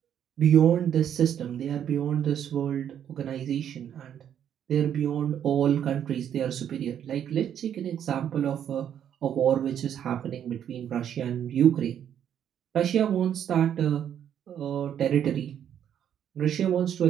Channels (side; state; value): left; quieter; 9.5 dB